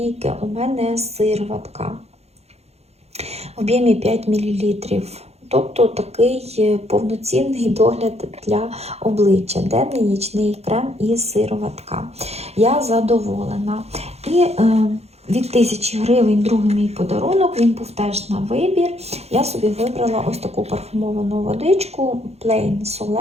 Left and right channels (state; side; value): late; left; 0.31 ms